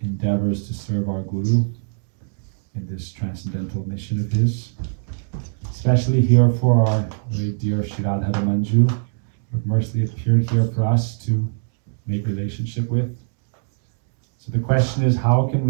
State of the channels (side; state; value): left; silent; 64 dB below the other